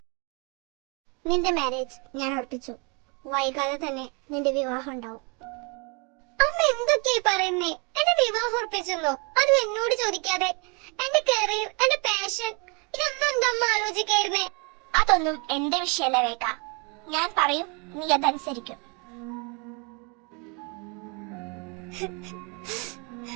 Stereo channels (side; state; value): left; quieter; 32.6 dB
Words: നിന്റെ മാരേജ് ഞാൻ ഉറപ്പിച്ചു. വൈകാതെ തന്നെ നിന്റെ വിവാഹം ഉണ്ടാവും. അമ്മ എന്തൊക്കെയായി പറയുന്നേ? എന്റെ വിവാഹം ഉറപ്പിച്ചെന്നോ? അതും എന്നോട് ചോദിക്കാതെ. എന്റെ കരിയർ, എന്റെ പാഷൻ, ഇതൊന്നും എന്താ അമ്മ ആലോചിക്കായിരുന്നേ? അതൊന്നും എന്റെ വിഷയമല്ല വേഗ. ഞാൻ പറയും, നീ അതനുസരിക്കും.